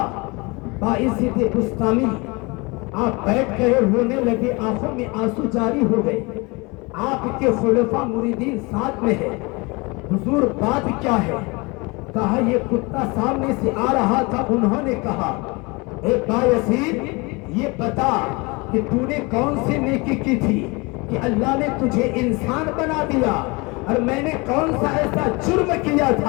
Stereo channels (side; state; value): right; quieter; 26.7 dB